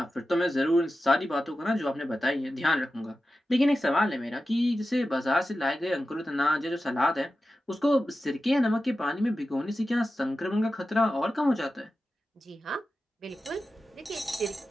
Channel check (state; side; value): normal; both; correlation 0.93